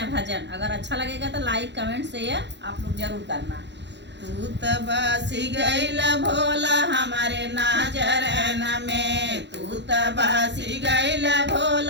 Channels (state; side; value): late; left; 0.51 ms